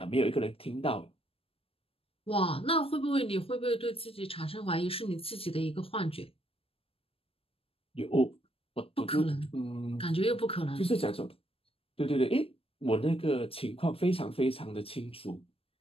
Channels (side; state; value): right; late; 0.27 ms